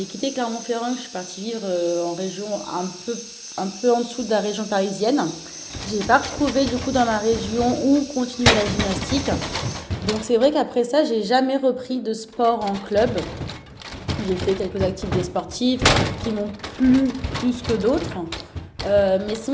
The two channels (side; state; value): both; identical; correlation 1.00